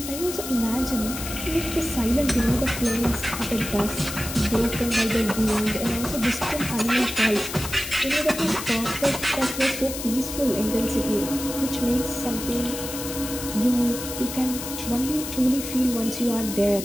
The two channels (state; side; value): noise; left; hiss, 8 dB below the sound